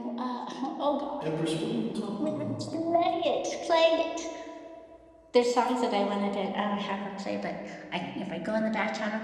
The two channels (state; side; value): identical; both; correlation 1.00